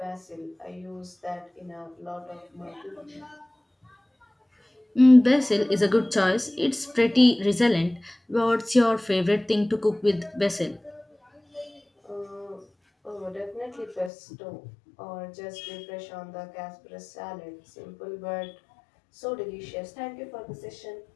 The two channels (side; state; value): right; drops out; at 14.1 s